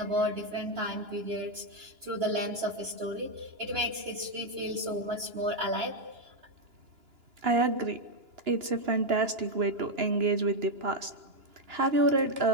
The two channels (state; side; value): late; left; 2.9 ms